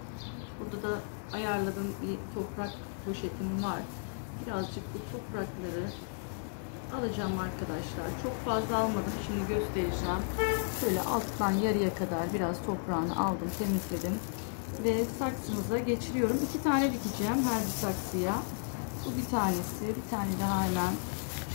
Burada da ayarladığım bir toprak poşetim var. Birazcık bu toprakları alacağım arkadaşlar. Çok fazla almadım. Şimdi göstereceğim. Şöyle alttan yarıya kadar biraz toprağını aldım, temizledim. Ve saksımıza geçiriyorum. 2 tane dikeceğim her bir saksıya. Bu bir tanesi. Bir tane daha hemen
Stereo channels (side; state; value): right; silent; 55 dB below the other